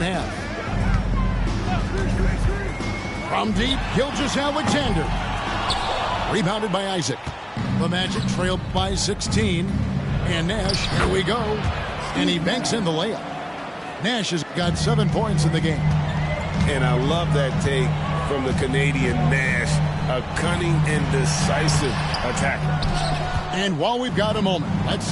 half. From deep, Gilgeous-Alexander. Rebounded by Isaac. The Magic trailed by 16. And Nash, here we go. And he banks in the layup. Nash has got 7 points in the game. And I love that take from the Canadian Nash, a cunning and decisive attacker. And while we've got a moment, let's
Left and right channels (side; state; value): both; identical; correlation 1.00